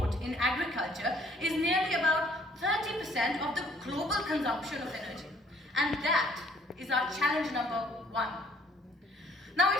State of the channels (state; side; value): normal; both; correlation 0.61